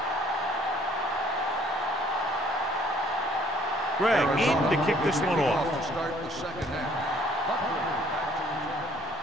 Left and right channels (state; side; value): normal; both; correlation 0.60